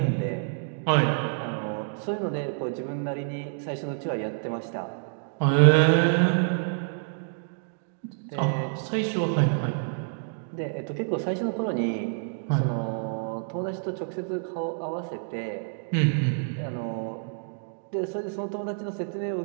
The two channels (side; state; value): left; silent; digital silence